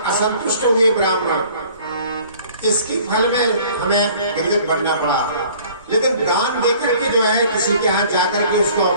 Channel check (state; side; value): inverted; both; correlation -0.52